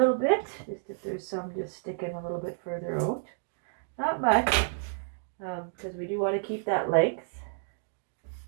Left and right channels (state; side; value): silent; left; digital silence